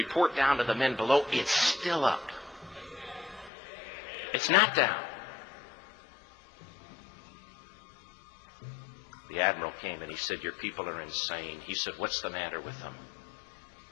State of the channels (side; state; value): right; drops out; at 3.5 s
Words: down to the men below, it's still up. It's not down. The admiral came and he said, your people are insane. He said, what's the matter with them?